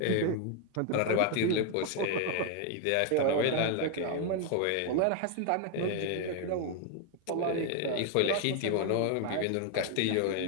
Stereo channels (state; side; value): different; both; correlation 0.00